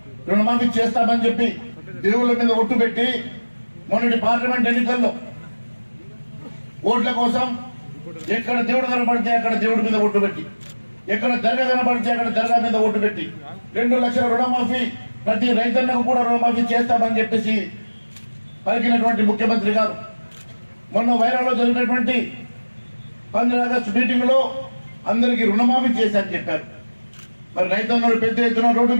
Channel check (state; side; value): inverted; both; correlation -1.00